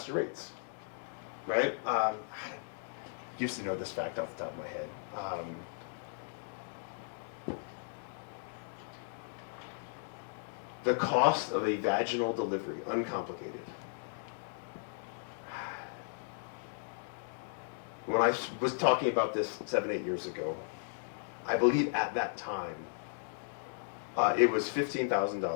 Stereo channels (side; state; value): right; silent; digital silence